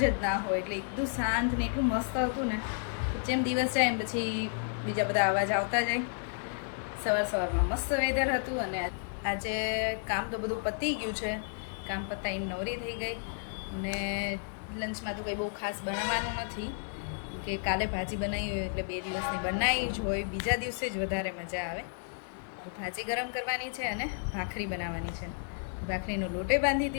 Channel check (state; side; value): silent; right; 56 dB below the other